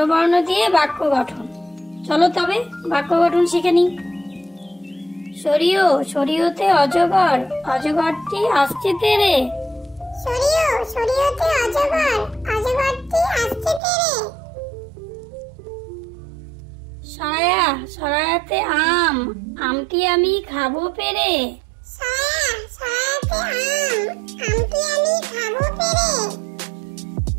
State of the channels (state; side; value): drops out; left; at 13.8 s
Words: দিয়ে বাক্য গঠন। চলো তবে বাক্য গঠন শিখে নিই। সরিও, সরিওতে অজগর, অজগরটি আসছে তেরে। সরিও, সরিওতে অজগর, অজগরটি আসছে তেরে। সরায়া, সরায়াতে আম, আমটি আমি খাবো পেরে। সরায়া, সরায়াতে আম, আমটি আমি খাবো পেরে।